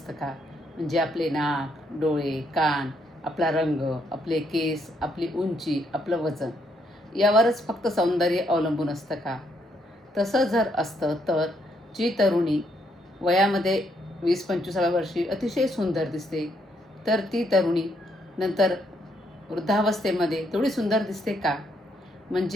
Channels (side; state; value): both; normal; correlation 0.74